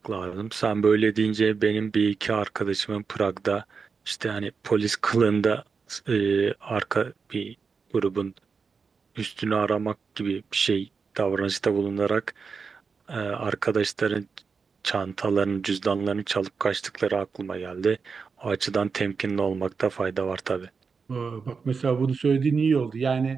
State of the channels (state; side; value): quieter; left; 5.3 dB